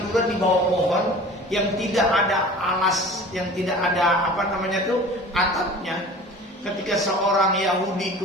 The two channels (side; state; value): both; normal; correlation 0.42